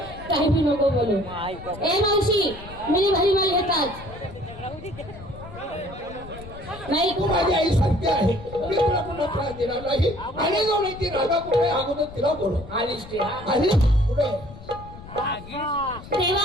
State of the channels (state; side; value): noise; left; rumble, 15 dB below the sound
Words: काही बी नको बोलू. ए मावशी मी भारी माल घेतात नाही. तू माझी आई सत्य आहे. मी तुला पुन्हा त्रास देणार नाही. आणि जाऊन ती राधा कुठे अगोदर तिला बोल. आलीस ती आली कुठे